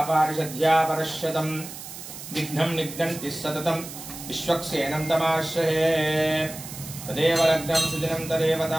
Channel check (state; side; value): noise; right; hiss, 12 dB below the sound